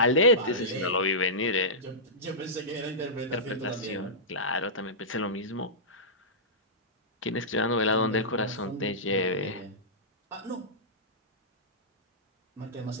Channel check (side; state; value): both; normal; correlation -0.16